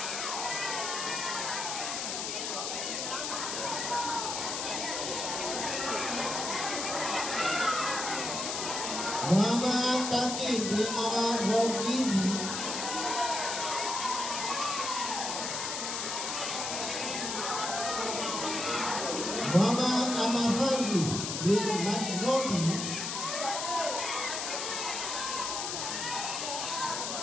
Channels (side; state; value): left; noise; hiss, 3 dB below the sound